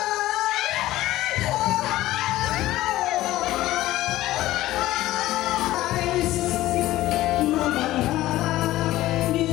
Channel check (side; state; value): right; quieter; 15.9 dB